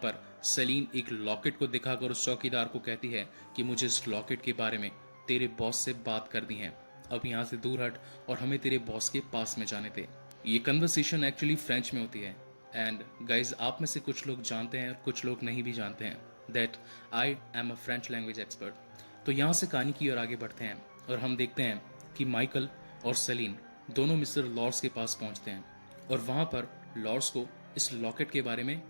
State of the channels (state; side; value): inverted; both; correlation -1.00